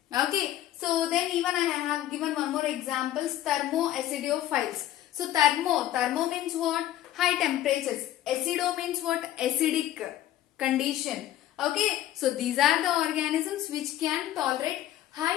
Okay, so then even I have given one more example, thermoacidophiles. So thermo means what? High temperatures. Acido means what? Acidic condition. Okay, so these are the organisms which can tolerate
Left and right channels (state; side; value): quieter; right; 13.1 dB